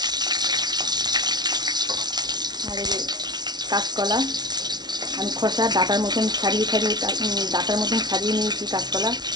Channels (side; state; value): left; late; 0.20 ms